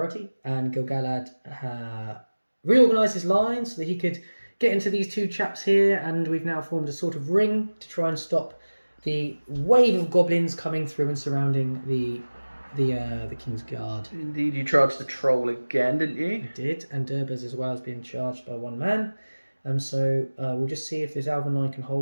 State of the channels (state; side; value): inverted; both; correlation -1.00